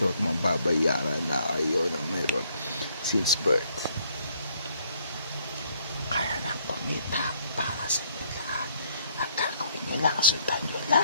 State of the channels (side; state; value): both; inverted; correlation -0.67